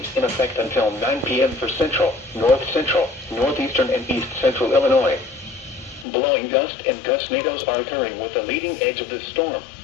in effect until 9 p.m. for central, north central, northeastern, and east central Illinois. Blowing gust and gustnadoes are occurring with the leading edge of this storm.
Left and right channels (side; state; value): right; drops out; at 6.1 s